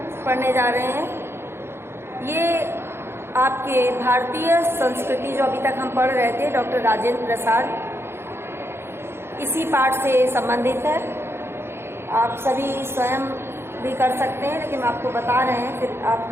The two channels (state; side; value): late; left; 0.12 ms